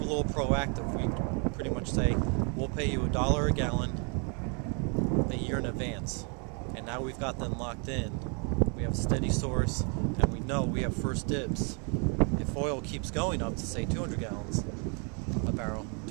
proactive. We pretty much say, we'll pay you $1 a gallon a year in advance. And now we've got them locked in. We have a steady source, and we know we have first dibs. If oil keeps going up to, say, 200 gallons a barrel,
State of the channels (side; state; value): left; quieter; 37.4 dB